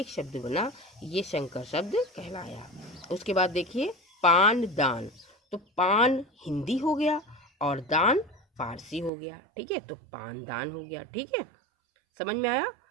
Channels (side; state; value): left; drops out; at 9.1 s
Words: शब्द बना, ये संकर शब्द कहलाया। उसके बाद देखिए पान दान। तो पान हिंदी हो गया और दान फारसी हो गया। ठीक है, तो पान दान हो गया। ठीक है, समझ में आया।